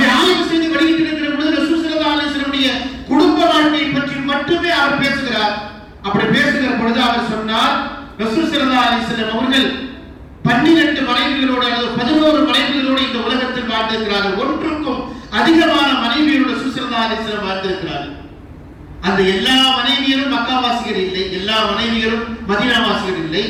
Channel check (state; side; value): identical; both; correlation 1.00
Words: ஆய்வு செய்து வெளியிட்டிருக்கிற பொழுது ரசூல் ஸல்லல்லாஹு அலைஹி வஸல்லம் குடும்ப வாழ்க்கையை பற்றி மட்டுமே அவர் பேசுகிறார். அப்படி பேசுகிற பொழுது அவர் சொன்னார், ரசூல் ஸல்லல்லாஹு அலைஹி வஸல்லம் அவர்கள் 12 மனைவிகளோடு அல்லது 11 மனைவிகளோடு இந்த உலகத்தில் வாழ்ந்திருக்கிறார்கள். ஒன்றுக்கும் அதிகமான மனைவியரோடு ரசூல் ஸல்லல்லாஹு அலைஹி வஸல்லம் வாழ்ந்திருக்கிறார்கள். அந்த எல்லா மனைவியரும் மக்காவாசிகள் இல்லை, எல்லா மனைவியரும் மதீனாவாசிகள் இல்லை.